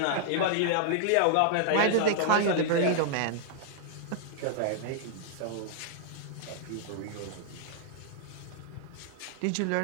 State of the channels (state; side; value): different; both; correlation -0.01